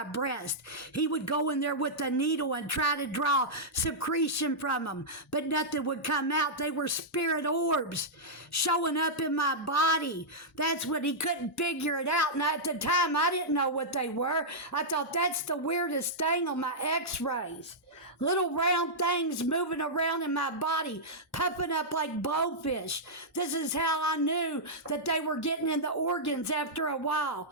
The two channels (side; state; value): both; normal; correlation -0.09